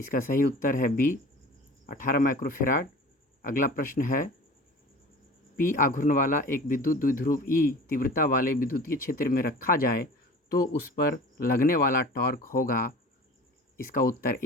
सही उत्तर है बी, 18 माइक्रोफेराड। अगला प्रश्न है, पी आघूर्ण वाला एक विद्युत द्विध्रुव ई तीव्रता वाले विद्युतीय क्षेत्र में रखा जाए तो उस पर लगने वाला टॉर्क होगा। इसका उत्तर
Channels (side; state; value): both; normal; correlation 0.41